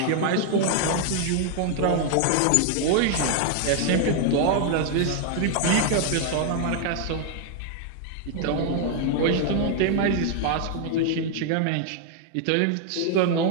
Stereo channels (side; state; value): both; different; correlation 0.00